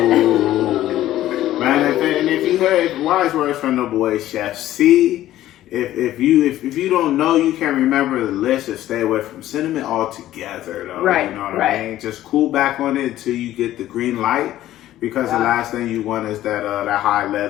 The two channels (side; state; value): right; quieter; 13.8 dB